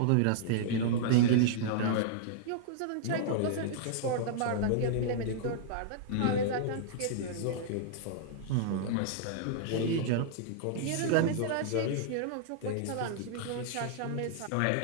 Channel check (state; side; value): different; both; correlation -0.01